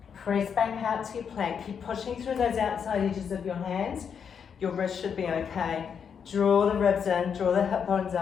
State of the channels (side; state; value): right; quieter; 7.1 dB